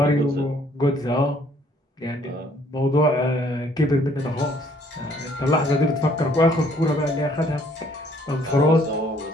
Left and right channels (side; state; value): both; normal; correlation 0.63